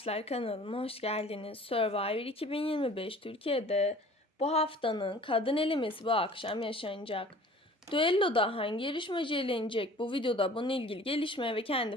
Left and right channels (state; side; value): normal; both; correlation 0.48